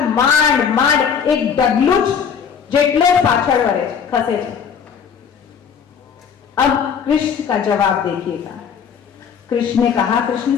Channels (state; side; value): quieter; right; 7.1 dB